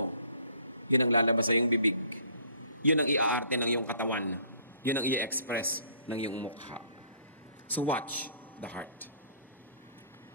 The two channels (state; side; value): inverted; both; correlation -0.57